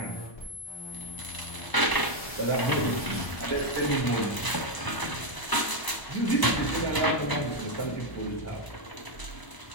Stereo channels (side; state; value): right; late; 1.0 ms